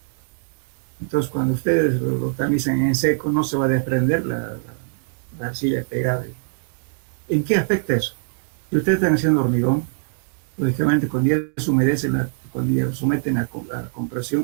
Entonces cuando ustedes lo tamizan en seco, no se va a desprender la arcilla pegada. ¿En qué afecta eso? Si ustedes están haciendo hormigón, lógicamente cuando ya se humedece, cuando ya lo someten a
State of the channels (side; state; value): left; silent; digital silence